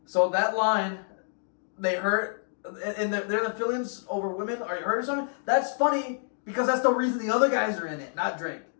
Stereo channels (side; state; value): right; silent; digital silence